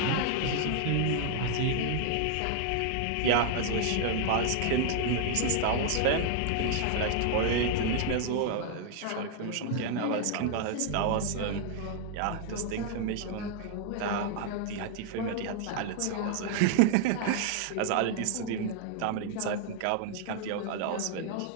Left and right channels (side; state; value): both; different; correlation 0.00